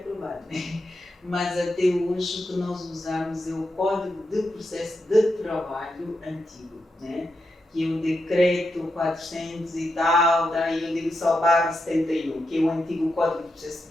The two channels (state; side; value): normal; both; correlation 0.86